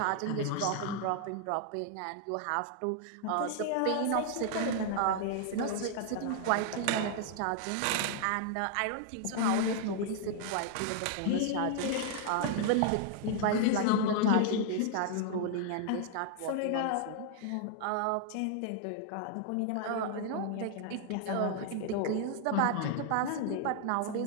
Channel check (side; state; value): both; different; correlation 0.00